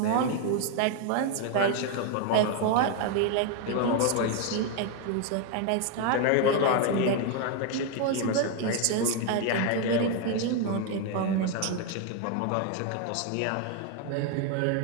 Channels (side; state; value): both; different; correlation 0.01